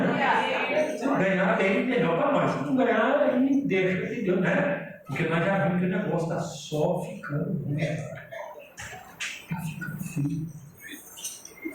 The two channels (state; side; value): identical; both; correlation 1.00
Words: Se ganhar, bem, melhor para nós. Se não ganhar, aí deixa de Deus, né? Porque nós já vimos que o negócio está só ficando ruim. Está ficando frio.